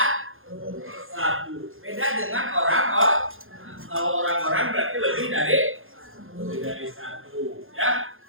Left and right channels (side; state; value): left; late; 0.60 ms